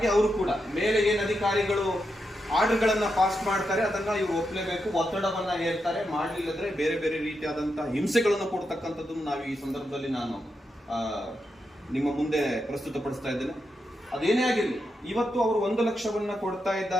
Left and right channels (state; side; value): normal; both; correlation 0.85